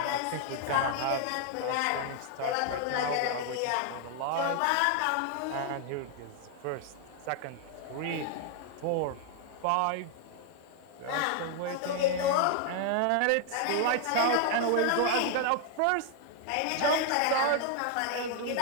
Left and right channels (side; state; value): both; different; correlation 0.00